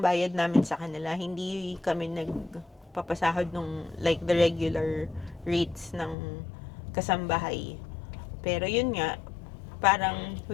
namin sa kanila, hindi kami nagpapasahod nung like the regular rates ng kasambahay. Pero yun nga, parang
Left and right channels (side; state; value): right; drops out; at 6.2 s